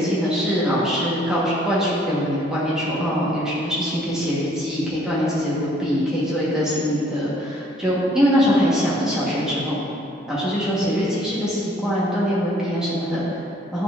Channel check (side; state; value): both; normal; correlation 0.61